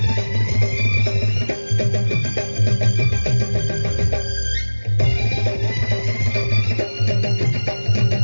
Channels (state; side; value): inverted; both; correlation -1.00